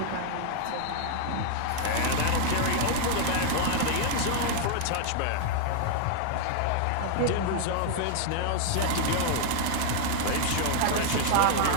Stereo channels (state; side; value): different; both; correlation 0.00